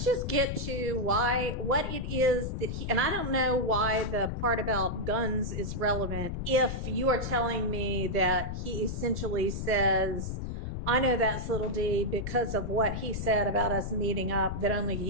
just get to what it is that and I don't know why the part about guns is relevant if you are telling me that he essentially says, I know that's little D because of what he said about us meeting up that only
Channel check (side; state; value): left; noise; rumble, 4 dB below the sound